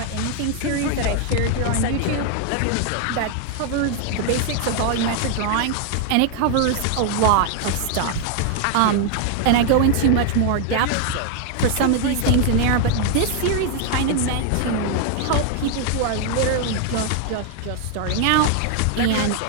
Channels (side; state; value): both; different; correlation 0.00